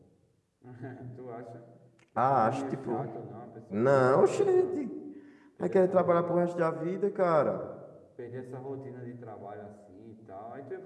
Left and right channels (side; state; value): both; identical; correlation 1.00